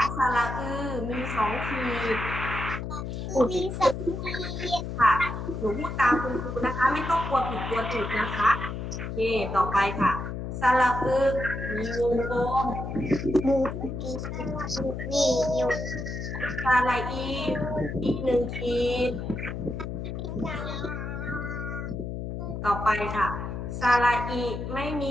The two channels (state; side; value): noise; left; hum, 5 dB below the sound